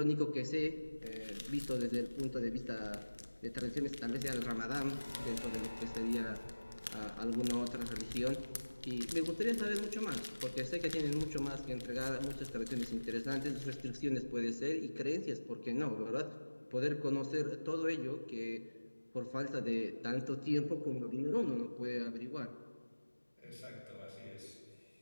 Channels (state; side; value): inverted; both; correlation -1.00